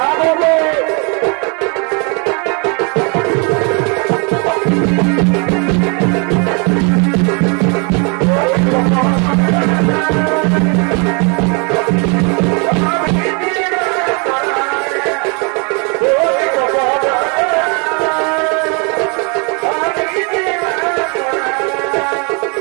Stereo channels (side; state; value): left; quieter; 34.1 dB